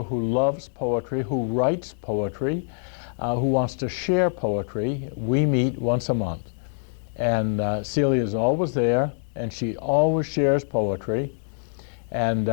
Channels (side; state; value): right; silent; digital silence